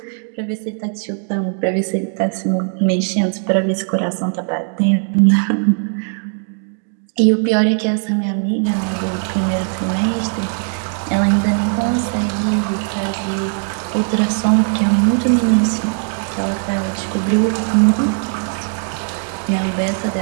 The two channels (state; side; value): silent; left; 56 dB below the other